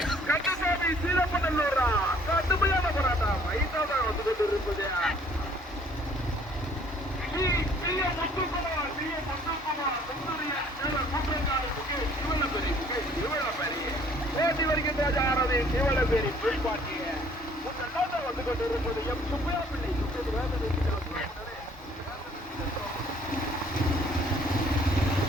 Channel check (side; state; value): both; normal; correlation 0.58